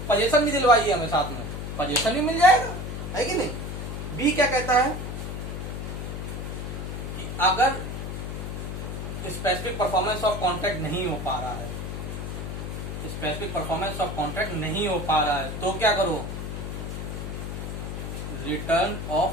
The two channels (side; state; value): left; noise; hum, 5 dB below the sound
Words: पोजीशन भी दिलवाइए हमें, साथ में पोजीशन भी मिल जाएगा, है कि नहीं। बी क्या कहता है कि अगर स्पेसिफिक परफॉर्मेंस ऑफ कॉन्ट्रैक्ट नहीं हो पा रहा है, स्पेसिफिक परफॉर्मेंस ऑफ कॉन्ट्रैक्ट नहीं हो पा रहा है, तो क्या करो, रिटर्न